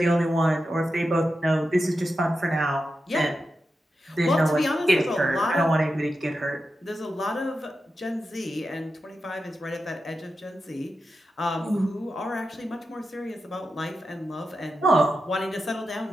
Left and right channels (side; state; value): both; normal; correlation 0.90